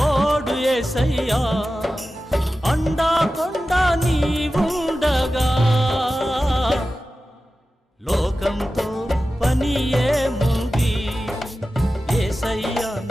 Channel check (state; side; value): normal; both; correlation 0.94